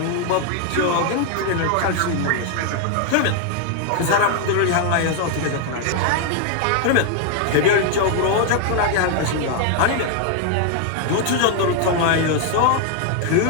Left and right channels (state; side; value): different; both; correlation 0.00